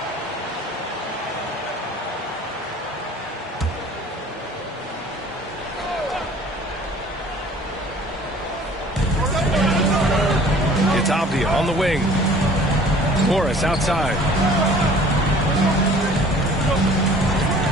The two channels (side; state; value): both; normal; correlation 0.50